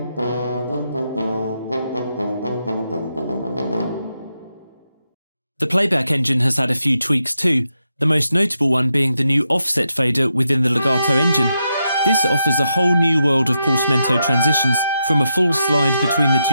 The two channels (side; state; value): both; inverted; correlation -0.84